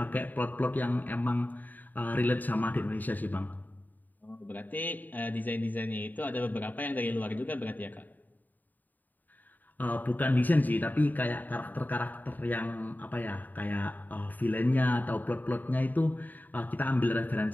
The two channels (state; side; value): late; right; 0.086 ms